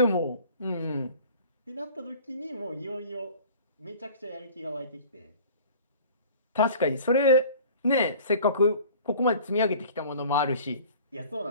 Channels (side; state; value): both; inverted; correlation -0.46